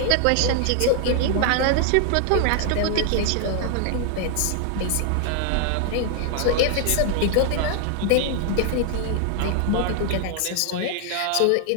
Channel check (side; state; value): both; different; correlation 0.00